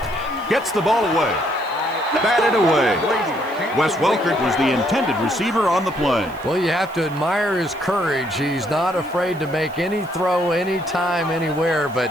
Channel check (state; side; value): noise; right; hiss, 25 dB below the sound